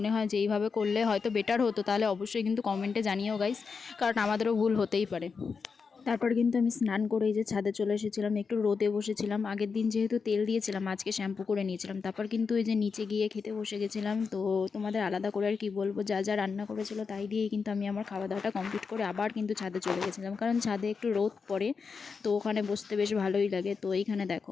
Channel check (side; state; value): right; quieter; 5.3 dB